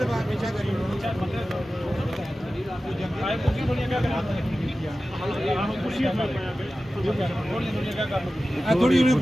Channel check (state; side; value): normal; both; correlation 0.95